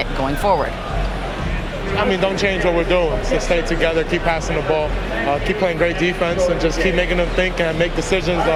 going forward? I mean, don't change what we're doing. So stay together, keep passing the ball, keep playing great defense, and just keep making them think and make decisions,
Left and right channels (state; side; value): identical; both; correlation 1.00